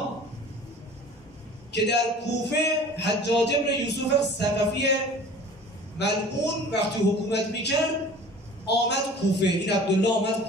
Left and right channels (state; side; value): normal; both; correlation 0.44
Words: که در کوفه حجاج ابن یوسف ثقفی ملعون وقتی حکومت میکرد آمد کوفه. این عبدالله آمد